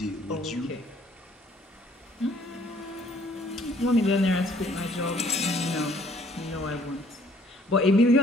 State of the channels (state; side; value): normal; both; correlation 0.60